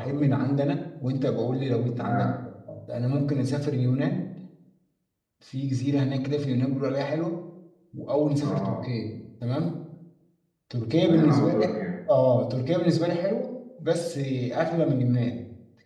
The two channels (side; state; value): both; identical; correlation 1.00